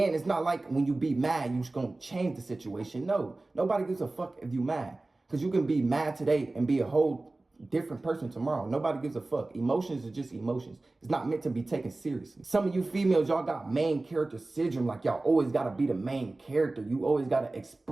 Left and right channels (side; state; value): left; quieter; 3.0 dB